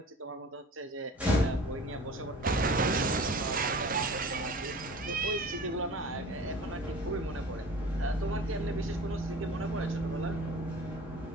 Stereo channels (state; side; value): normal; both; correlation 0.41